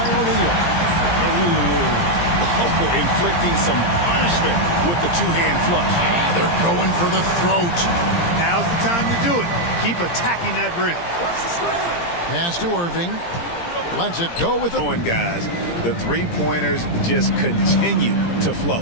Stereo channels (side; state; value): right; late; 17 ms